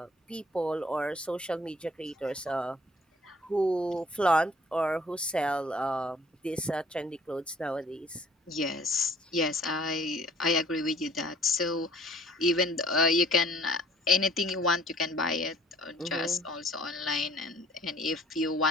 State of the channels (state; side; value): normal; both; correlation 0.56